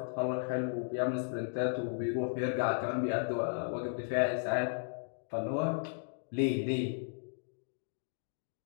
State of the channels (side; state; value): right; silent; digital silence